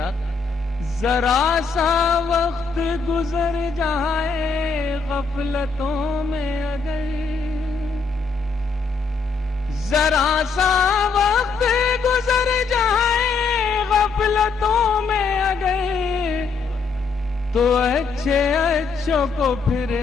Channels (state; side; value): quieter; right; 4.8 dB